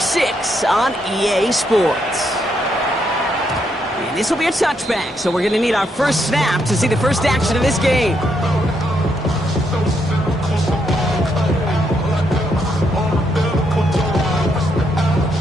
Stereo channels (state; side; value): normal; both; correlation 0.77